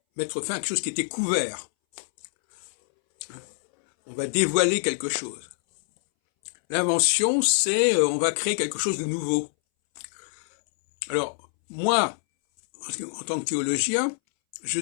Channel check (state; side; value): silent; right; 61 dB below the other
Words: mettre fin à quelque chose qui était couvert. On va dévoiler quelque chose. L'invention, c'est on va créer quelque chose de nouveau. Alors, moi, en tant que théologien, je